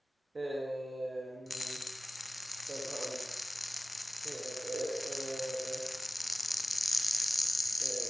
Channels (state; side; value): normal; both; correlation 0.96